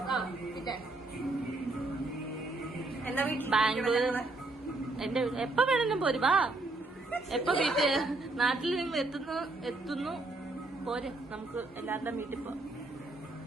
പിന്നെ എന്താ ബാംഗ്ലൂർ എന്റെ എപ്പ വേണമെങ്കിലും പോരും. വാ, എപ്പ നാട്ടിൽ നിങ്ങൾ എത്തുന്നു പോരെ, നമുക്ക് എല്ലാവരുടെയും വീട്ടിൽ പോവാം.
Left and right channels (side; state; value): left; quieter; 3.1 dB